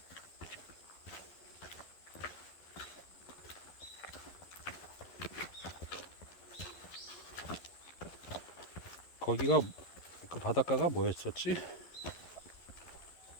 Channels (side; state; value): right; late; 11 ms